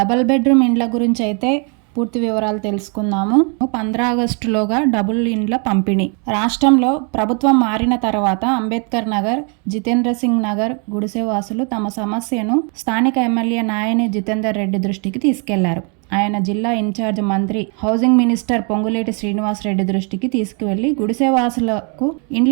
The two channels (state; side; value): quieter; left; 37.1 dB